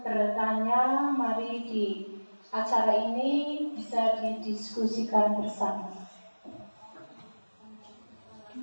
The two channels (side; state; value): both; inverted; correlation -1.00